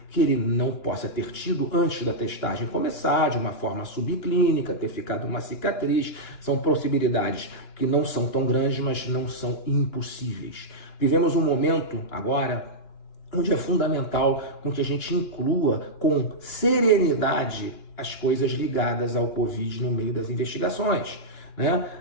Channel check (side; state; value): right; late; 2.9 ms